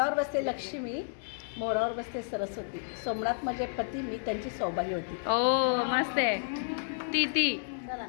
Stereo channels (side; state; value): right; silent; digital silence